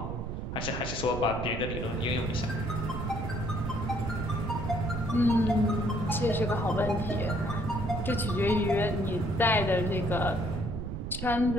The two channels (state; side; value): noise; right; rumble, 4 dB below the sound